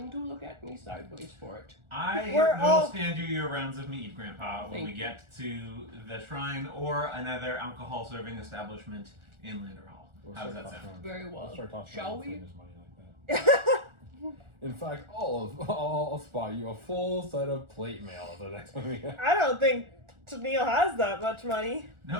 to look at me sideways for it. I We're will all- stand you your rounds of meat, Grandpa, when Thank we you. get to the shrine or another alcohol serving establishment in Landerhall. How does that sound? Very well. Let's start talking Shall about we? his money like that. In fact, I'll spot you a full set of plate mail at the next one we have. I don't think Neil has that much money.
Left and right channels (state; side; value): late; left; 1.4 ms